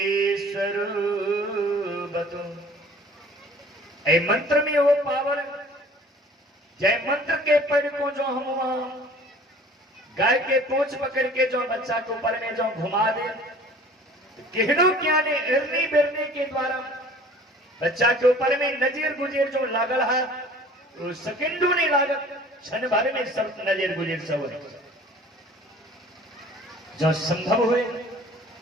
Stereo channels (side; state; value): both; normal; correlation 0.49